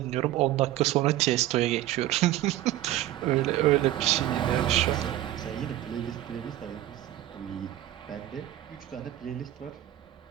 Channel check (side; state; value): left; quieter; 14.2 dB